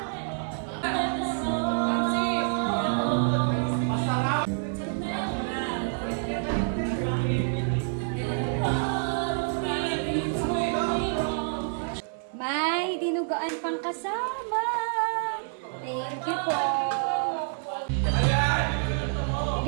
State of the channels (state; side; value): silent; left; 60 dB below the other